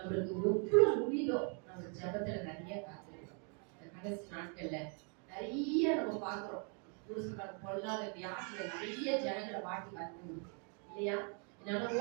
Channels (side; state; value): left; quieter; 39.1 dB